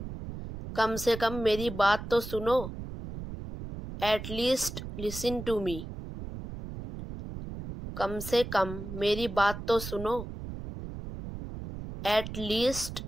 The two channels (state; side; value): noise; right; rumble, 9 dB below the sound